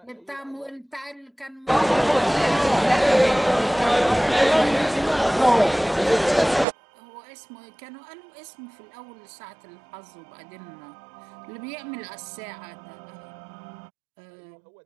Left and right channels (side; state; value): left; drops out; at 6.7 s